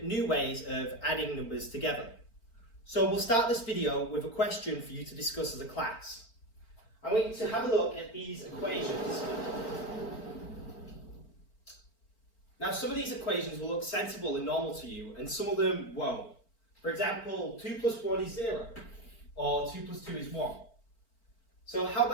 new ways of adding numbers together. So we'll start this video with a question for you to discuss as a class. I want you to have a look at these equations. Now some of these equations will look sensible and normal to you, and some of them won't. For example, 2 plus 1 is 0, or 2 plus 2 is 1. So how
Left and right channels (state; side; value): late; right; 4.5 ms